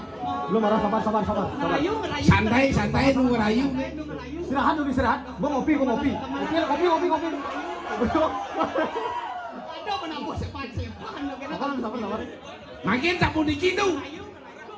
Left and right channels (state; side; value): identical; both; correlation 1.00